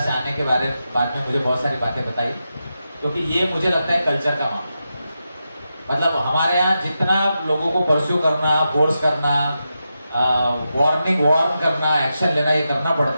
आने के बाद में मुझे बहुत सारी बातें बताई, क्योंकि ये मुझे लगता है कल्चर का मामला। मतलब हमारे यहाँ जितना लोगों को परस्यू करना, फोर्स करना, वार्न करना, एक्शन लेना, ये करना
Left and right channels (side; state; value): both; inverted; correlation -0.88